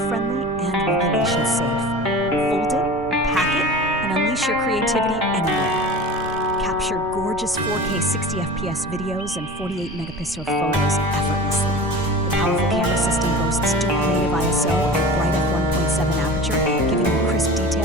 and regulation-safe. Fold it, pack it, and unleash your creativity anywhere. Capture gorgeous 4K 60 FPS videos and 48 megapixel photos effortlessly. The powerful camera system boasts dual native ISO and bright f1.7 aperture, giving you crisp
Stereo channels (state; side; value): noise; right; rumble, 16 dB below the sound